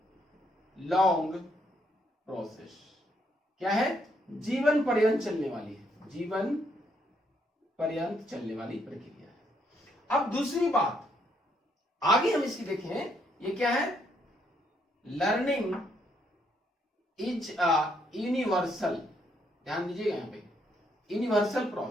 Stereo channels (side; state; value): both; normal; correlation 0.73